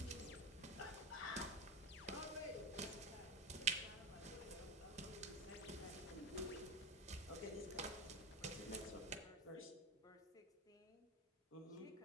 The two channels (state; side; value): normal; both; correlation 0.21